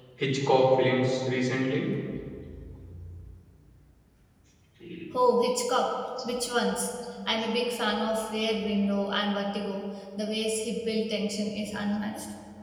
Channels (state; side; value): identical; both; correlation 1.00